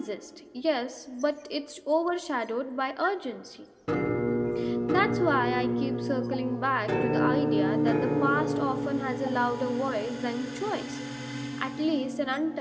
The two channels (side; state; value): both; identical; correlation 1.00